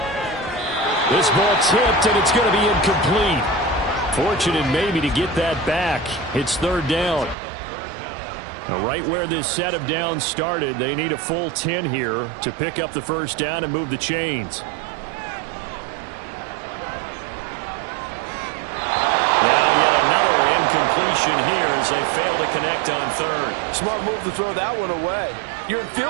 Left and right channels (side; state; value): left; drops out; at 7.4 s